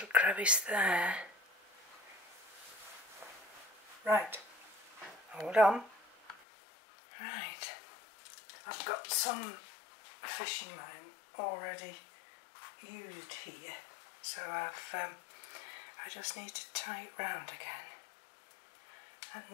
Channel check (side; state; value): right; drops out; at 6.4 s